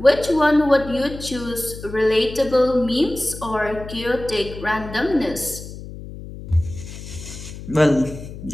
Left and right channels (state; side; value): noise; left; hum, 12 dB below the sound